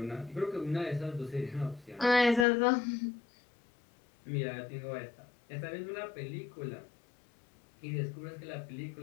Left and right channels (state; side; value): drops out; right; at 2.5 s